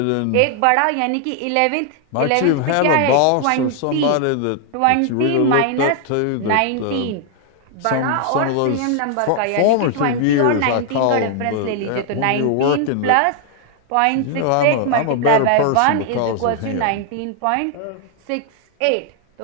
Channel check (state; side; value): different; both; correlation 0.00